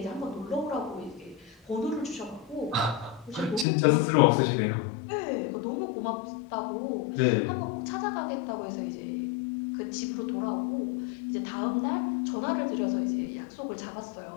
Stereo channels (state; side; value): drops out; right; at 3.7 s